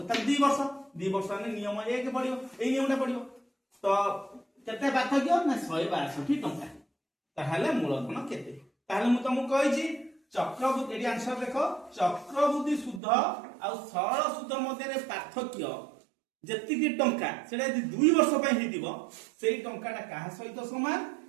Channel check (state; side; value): drops out; left; at 13.0 s